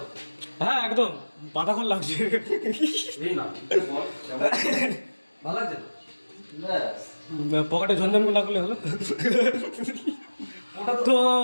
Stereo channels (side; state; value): both; inverted; correlation -1.00